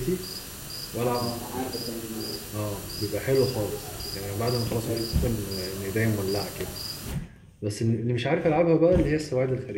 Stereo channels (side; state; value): both; identical; correlation 1.00